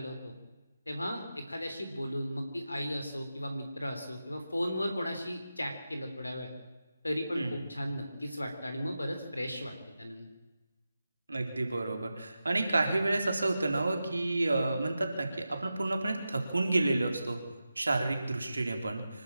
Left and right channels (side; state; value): both; inverted; correlation -0.91